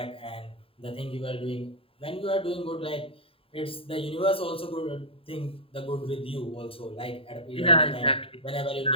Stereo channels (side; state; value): right; late; 0.27 ms